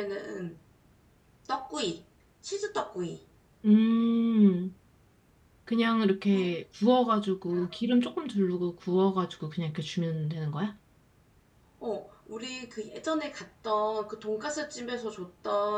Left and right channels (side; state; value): both; identical; correlation 1.00